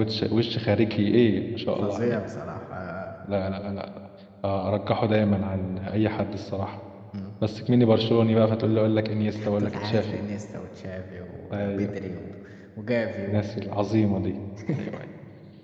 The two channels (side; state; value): both; identical; correlation 1.00